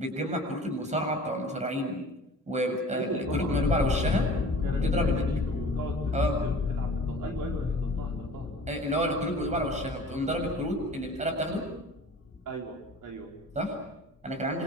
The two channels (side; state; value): both; normal; correlation 0.44